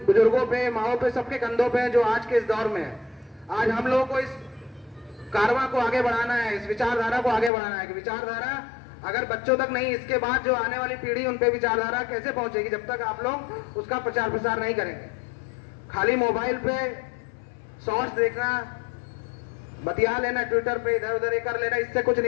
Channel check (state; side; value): drops out; right; at 7.5 s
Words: बुजुर्गों पे, माओ पे, सबके कंधों पे है, जो आज के इस दौर में है। आज हम लोगों को इस कारवां को आगे बढ़ाना है, इस विचारधारा को आगे बढ़ाना है कि विचारधारा अगर बच्चों तक नहीं, इसके बाद जो आने वाली पीढ़ी, उन पे विचारधारा कैसे पहुंचेगी जब तक आप लोग उसका प्रचार प्रसार नहीं करेंगे। खाली मोबाइल पे शॉर्ट्स देखना, बतिया लेना, ट्विटर पे इधर उधर कर लेना, इससे कुछ